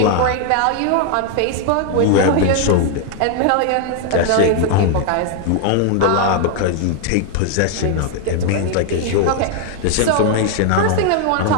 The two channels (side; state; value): both; different; correlation 0.00